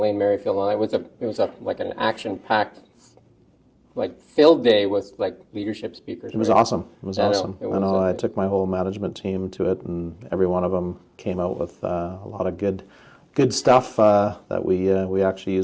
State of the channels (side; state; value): both; identical; correlation 1.00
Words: Merrifield. And it was like an action-packed, like filled day with like leadership speakers. It was awesome. It was awesome. I know. I took my whole management team to it, and every one of them came out with a lot of good stuff that we actually